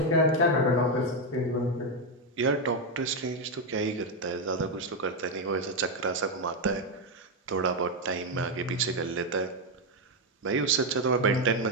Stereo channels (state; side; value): normal; both; correlation 0.05